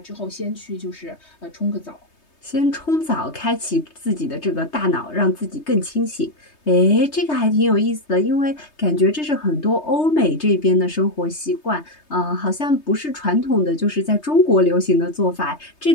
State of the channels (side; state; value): right; late; 3.2 ms